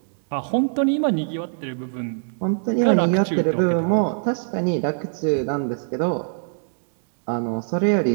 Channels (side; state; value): left; silent; digital silence